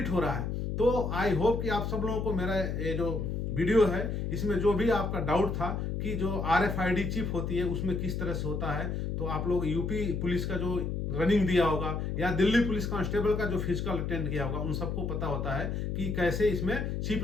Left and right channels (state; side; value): noise; left; hum, 2 dB below the sound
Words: हो रहा है। तो आई होप कि आप सब लोगों को मेरा ये जो वीडियो है इसमें जो भी आपका डाउट था कि जो RFID चिप होती है उसमें किस तरह से होता है, तो आप लोग यूपी पुलिस का जो रनिंग दिया होगा या दिल्ली पुलिस कांस्टेबल का जो फिजिकल अटेंड किया होगा उन सबको पता होता है कि कैसे इसमें चिप